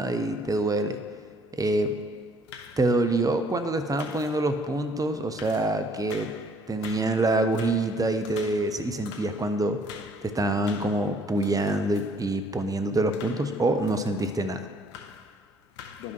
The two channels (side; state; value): both; normal; correlation 0.62